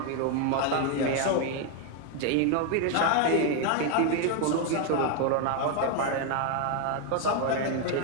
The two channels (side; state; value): both; different; correlation 0.01